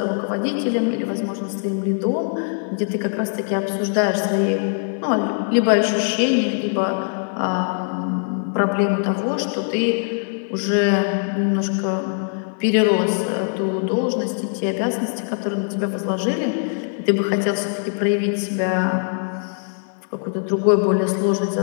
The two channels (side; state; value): right; silent; digital silence